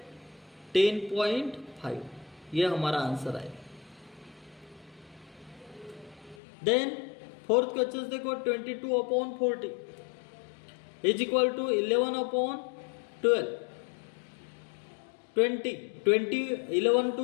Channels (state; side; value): drops out; right; at 6.4 s